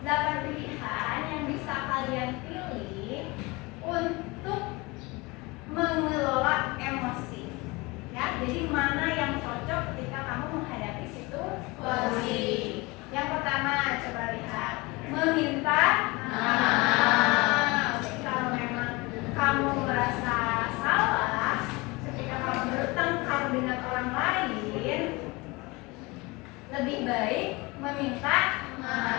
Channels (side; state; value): right; quieter; 24.4 dB